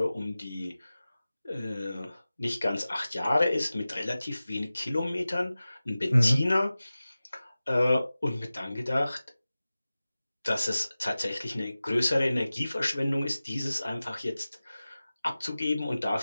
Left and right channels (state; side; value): inverted; both; correlation -0.96